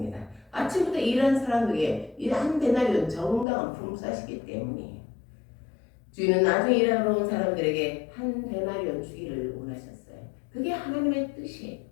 아침부터 일하는 사람에게 한 데나리온 정당한 품삯이기 때문이에요. 주인은 나중에 일하러 온 사람들에게 한 데나리온 주기를 원하셨어요. 그게 하나님의 뜻이에요.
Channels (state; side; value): drops out; right; at 3.5 s